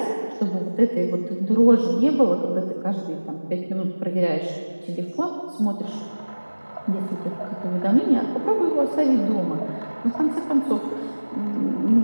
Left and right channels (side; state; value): both; inverted; correlation -1.00